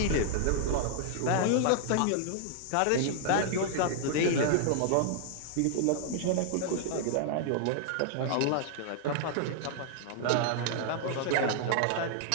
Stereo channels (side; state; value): both; different; correlation -0.01